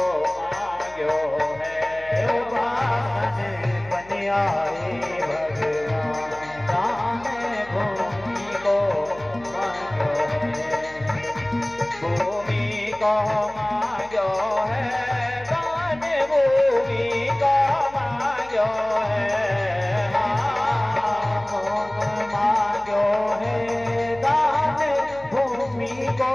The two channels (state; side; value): noise; left; hum, 22 dB below the sound